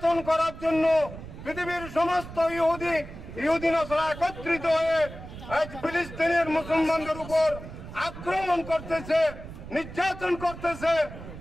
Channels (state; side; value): noise; right; rumble, 13 dB below the sound